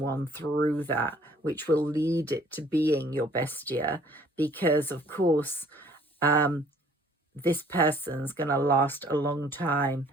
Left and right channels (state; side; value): normal; both; correlation 0.57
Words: through that, which will lead it to being your best year. Because, of course, this person's going to last a long time.